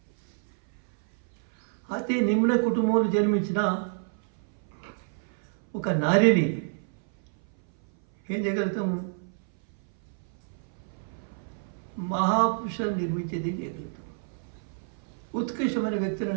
అతి నిమ్న కుటుంబంలో జన్మించిన ఒక నారిని ఏం చేయగలుగుతాము? మహాపురుషులను నిర్మించేది చేయగలుగుతాం. ఉత్కృష్టమైన వ్యక్తులను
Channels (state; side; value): silent; left; 58 dB below the other